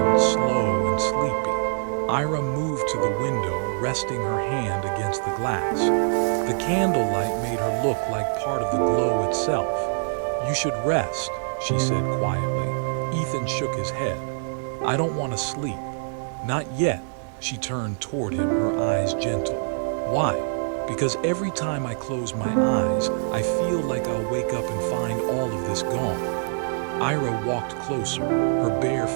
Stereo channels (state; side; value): silent; left; digital silence